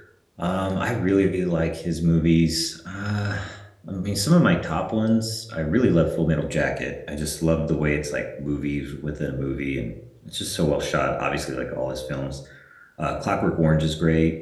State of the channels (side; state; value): both; identical; correlation 1.00